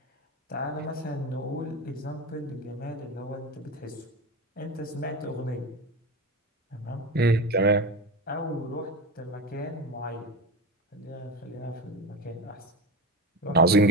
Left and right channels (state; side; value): normal; both; correlation 0.24